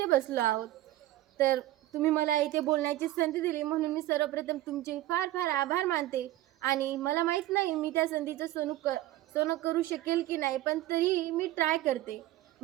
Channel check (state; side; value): quieter; left; 15.5 dB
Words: बसलो आहोत. तर तुम्ही मला इथे बोलण्याची संधी दिली म्हणून मी सर्वप्रथम तुमचे फार फार आभार मानते. आणि मला माहीत नाही मी त्या संधीचं सोनं करू शकेल की नाही, पण तरी मी ट्राय करते.